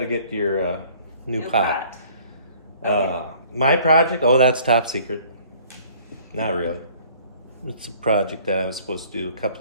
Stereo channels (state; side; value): inverted; both; correlation -0.54